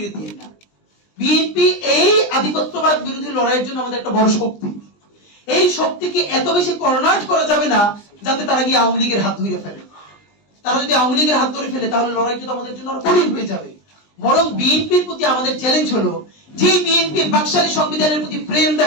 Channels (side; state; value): right; late; 20 ms